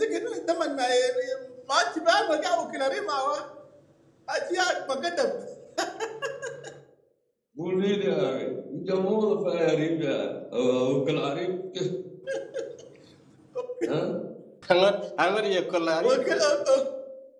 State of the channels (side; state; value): both; identical; correlation 1.00